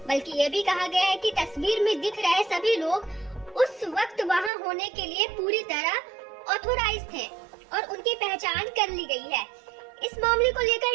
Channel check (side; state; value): left; drops out; at 4.5 s